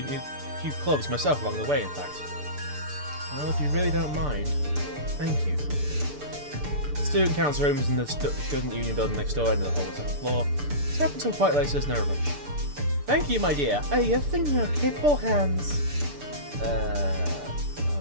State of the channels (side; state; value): left; late; 6.8 ms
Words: clubs myself along the way, in fact. Well, if you really don't mind, thank you. The student council room is in the student union building next door, end of the hall to the floor. Stay up until quite late, so there's no rush. Thank you, my dear. Are you thinking your capable hands?